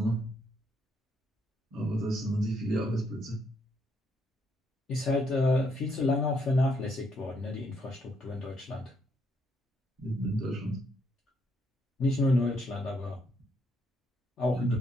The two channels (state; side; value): normal; both; correlation 0.74